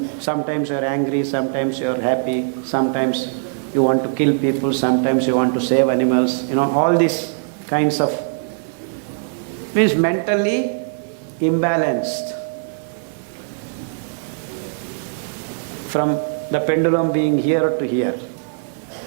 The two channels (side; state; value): left; silent; 57 dB below the other